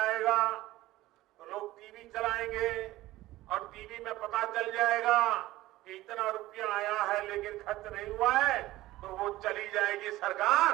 तो लोग टीवी चलाएंगे और टीवी में पता चल जाएगा कि इतना रुपया आया है लेकिन खर्च नहीं हुआ है, तो वो चली जाएगी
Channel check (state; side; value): quieter; left; 16.8 dB